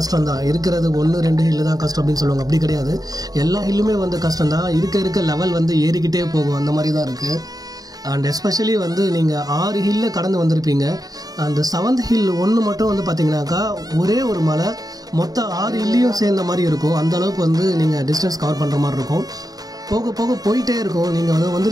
தான். இருக்கிறது 1-2 ஹில்லு தான் கஷ்டம் அப்படின்னு சொல்லுவாங்க, அப்படி கிடையாது. எல்லா ஹில்லுமே வந்து கஷ்டம் தான். இருக்க லெவல் வந்து ஏறிக்கிட்டே போகும், அந்த மாதிரி தான் இருக்குது. அண்ட் எஸ்பெஷலி வந்து நீங்கள் 6 ஹில்ல கடந்து வந்திருப்பீங்க. அந்த 7th ஹில் ஒன்று மட்டும் வந்து பார்த்தீங்கன்னாக்கா ஒரே ஒரு மலை மொத்தம் 6 ஹில்லையும் சேர்ந்த மாதிரி இருக்கும். அந்தளவுக்கு வந்து நீங்கள் டிஸ்டன்ஸ் கவர் பண்ணுற மாதிரி இருக்கும். போக போக போயிட்டே இருக்கும். நீங்கள் வந்து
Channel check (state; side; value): late; left; 0.18 ms